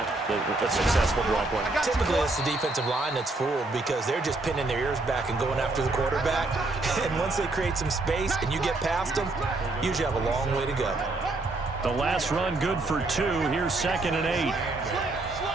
a successful draw play? Typically, it's the defensive line that's fooled because they're just pinning their ears back and going after the quarterback. And once they create some space and you get past them, you usually have a long way to go. The last run good for 2. Here's 2nd and 8.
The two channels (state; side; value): quieter; left; 3.1 dB